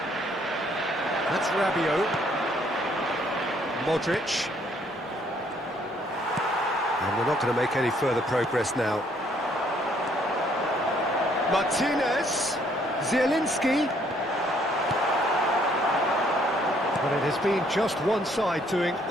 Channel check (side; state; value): both; normal; correlation 0.65